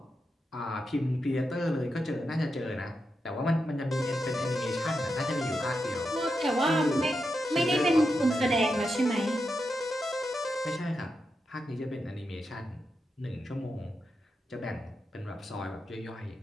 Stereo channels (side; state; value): both; normal; correlation 0.86